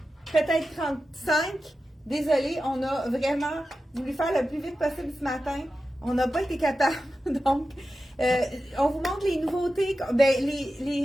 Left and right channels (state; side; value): normal; both; correlation 0.92